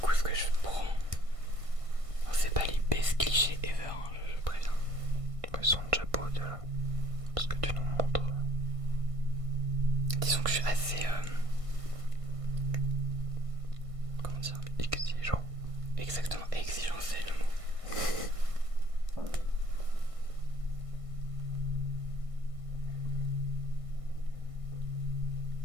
ce que je prends. C'est pas les best clichés ever, hein, je préviens. Ils sont déjà beaux déjà. Parce que tu nous montres. Disons que je suis assez... comment dire? Exigeant. Exactement, exigeant c'est le mot.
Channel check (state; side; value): late; left; 1.6 ms